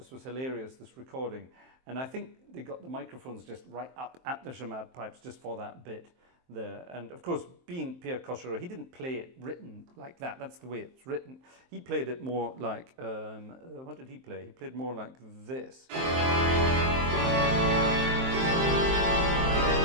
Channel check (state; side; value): late; left; 23 ms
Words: was hilarious, this recording. And I think they got the microphones just right up at the chamade pipes just for that bit there. And of course, being Pierre Cochereau, he didn't play it written like that. That's the way it's written. He played it more like, what did he play? He played more like this. He